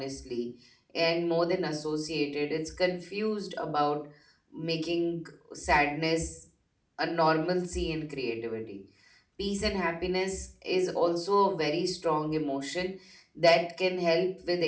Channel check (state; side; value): identical; both; correlation 1.00